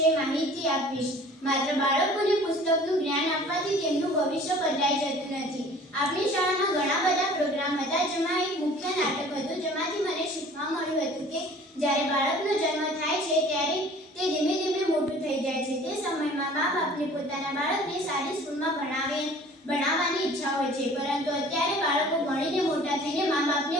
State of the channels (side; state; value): both; normal; correlation 0.48